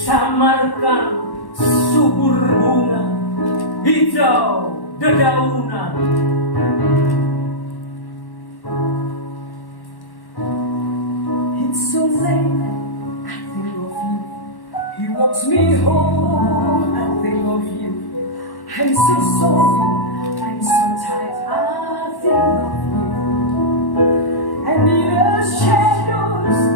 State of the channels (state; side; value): late; right; 1.1 ms